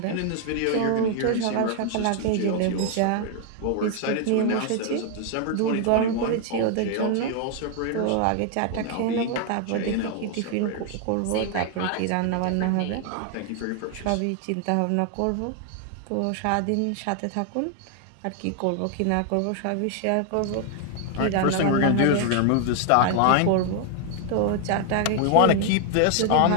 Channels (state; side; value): different; both; correlation 0.00